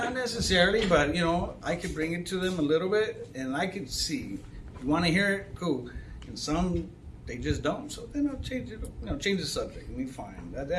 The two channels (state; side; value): identical; both; correlation 1.00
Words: necessarily, but I could bring it to them a little bit, and I could see. You want to hear it, cool. And some they just don't, so then I'll change it. Change the subject, and we fine.